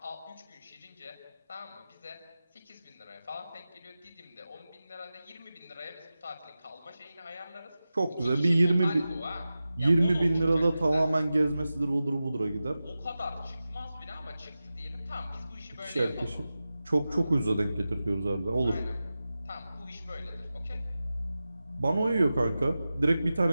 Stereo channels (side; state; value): both; inverted; correlation -0.94